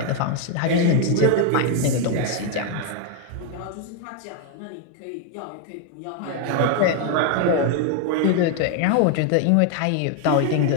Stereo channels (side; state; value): both; different; correlation 0.01